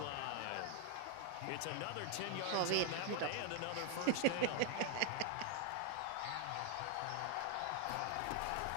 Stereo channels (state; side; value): different; both; correlation 0.01